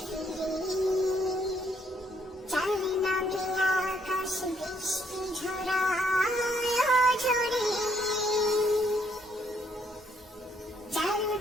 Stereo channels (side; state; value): both; normal; correlation 0.70